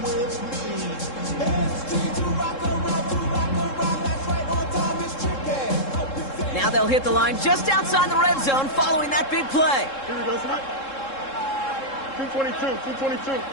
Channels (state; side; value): late; right; 3.7 ms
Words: Now they'll hit the line just outside the red zone following that big play. Here we go, Snap. 222.